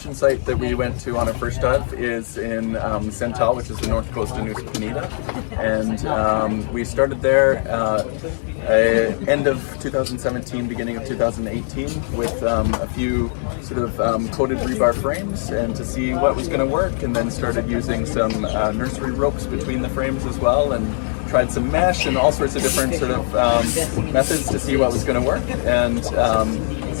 site that we went to on our first dive is in Sental, which is the north coast of Nusa Penida, and we started there end of 2017, beginning of 2018, with a few sort of coated rebar frames, and to see what was going to work, and then started using some nursery ropes between the frames as well, and tried some mesh and all sorts of different sort of methods to see what was going to work. And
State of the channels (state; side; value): silent; right; digital silence